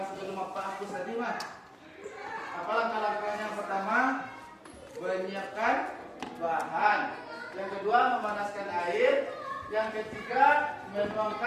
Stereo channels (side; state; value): both; identical; correlation 1.00